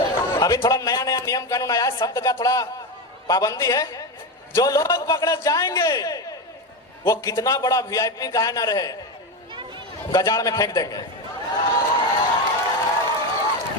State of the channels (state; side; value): normal; both; correlation 0.16